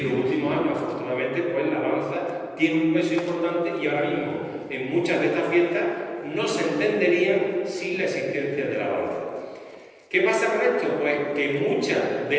los últimos años, afortunadamente, pues la danza tiene un peso importante y ahora mismo en muchas de estas fiestas no se entenderían sin la existencia de la danza. ¿Qué pasa con esto? Pues que muchas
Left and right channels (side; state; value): both; identical; correlation 1.00